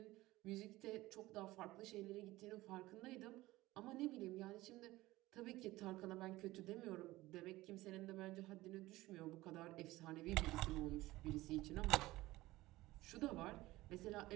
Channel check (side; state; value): left; quieter; 18.2 dB